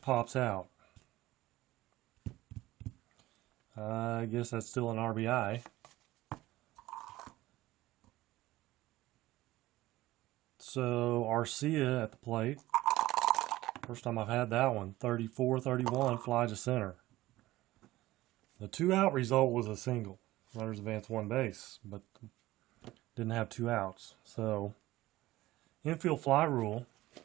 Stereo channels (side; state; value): left; quieter; 17.1 dB